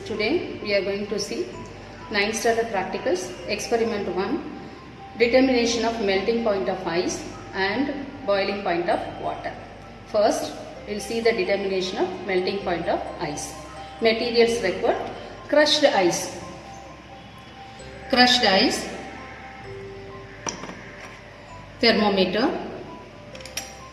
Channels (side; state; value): both; identical; correlation 1.00